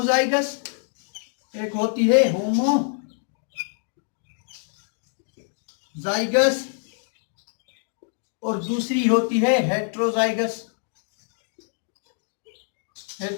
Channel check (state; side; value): silent; right; 61 dB below the other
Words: एक होती है होमोजाइगस और दूसरी होती है हेट्रोजाइगस.